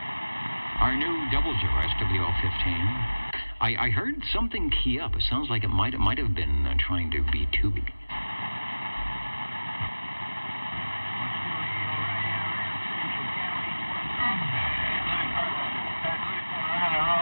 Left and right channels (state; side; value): inverted; both; correlation -1.00